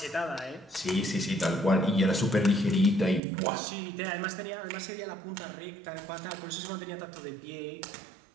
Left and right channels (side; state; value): left; drops out; at 3.2 s